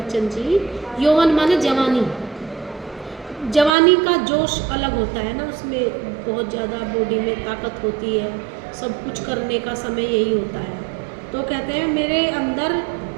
जी, यौवन माने जवानी। जवानी का जोश अलग होता है ना, उसमें बहुत ज़्यादा बॉडी में ताकत होती है, सब कुछ करने का समय यही होता है। तो कहते हैं मेरे अंदर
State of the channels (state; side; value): drops out; left; at 3.7 s